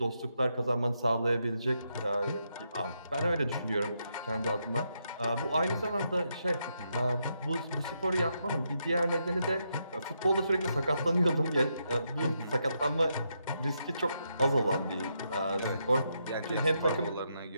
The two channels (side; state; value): both; inverted; correlation -0.81